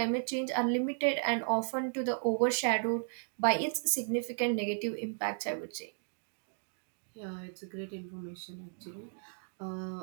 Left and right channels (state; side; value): silent; left; digital silence